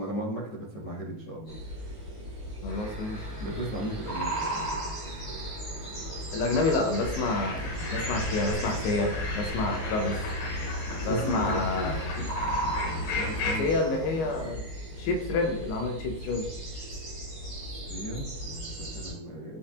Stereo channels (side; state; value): right; late; 19 ms